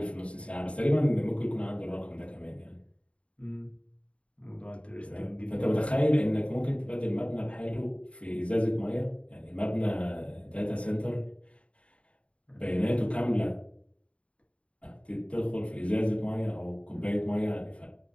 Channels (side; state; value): right; late; 0.061 ms